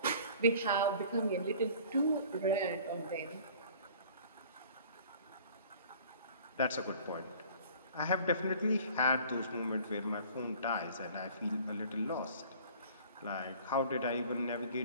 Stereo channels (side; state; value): both; inverted; correlation -0.48